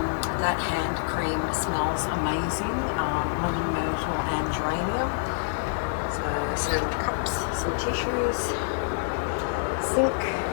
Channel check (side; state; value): right; silent; 60 dB below the other